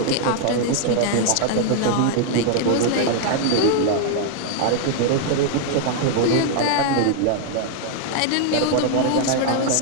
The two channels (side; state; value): both; different; correlation 0.00